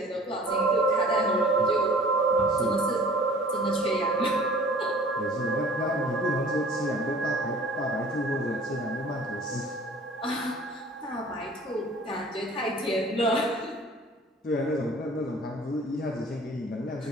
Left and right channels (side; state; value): both; normal; correlation 0.48